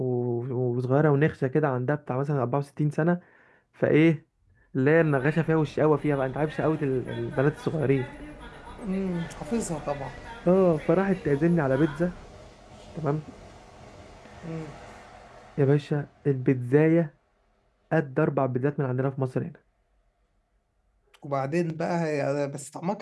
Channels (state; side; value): identical; both; correlation 1.00